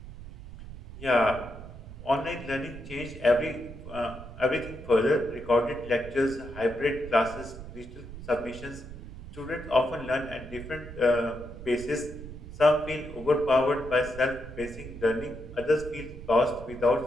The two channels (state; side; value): noise; right; rumble, 13 dB below the sound